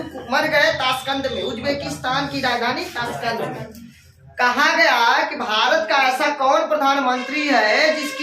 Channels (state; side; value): identical; both; correlation 1.00